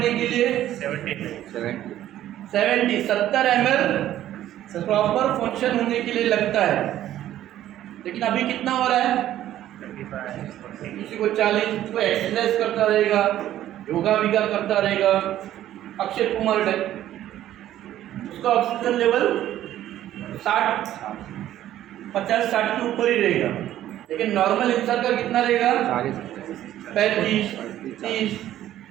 के लिए? 70 ml प्रॉपर फंक्शन होने के लिए लगता है। लेकिन अभी कितना हो रहा है? किसी को 40, कोई एक्सरसाइज करता रहेगा, योगा विगा करता रहेगा, अक्षय कुमार टाइप, उसका ऑक्सीजन लेवल 50-60 के ऊपर ही रहेगा। लेकिन नॉर्मल इंसान का कितना रहेगा? 35-30।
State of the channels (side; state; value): left; quieter; 12.7 dB